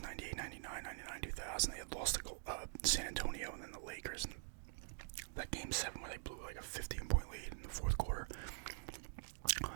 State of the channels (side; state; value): left; silent; digital silence